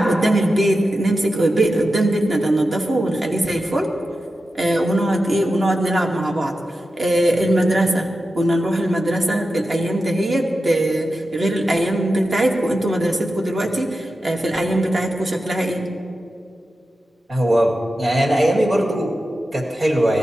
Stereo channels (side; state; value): both; normal; correlation 0.91